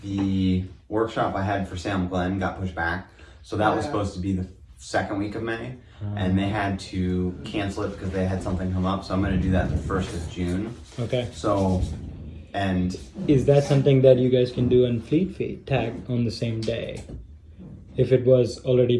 the workshop I had for Salem Glen got pushed back. So that was supposed to be the 2nd week of May, and they had to cancel it because they had something come up. So I'm going to do that the 1st of June. Okay. So, and is that something that you guys can do on Fleet Feet, tag on the same day? If it was already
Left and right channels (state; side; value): identical; both; correlation 1.00